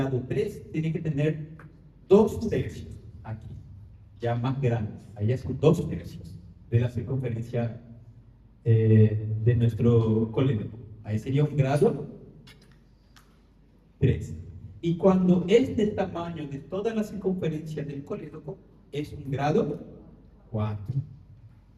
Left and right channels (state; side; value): identical; both; correlation 1.00